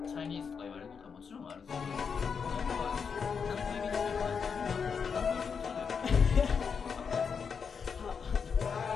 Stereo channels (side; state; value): right; quieter; 6.1 dB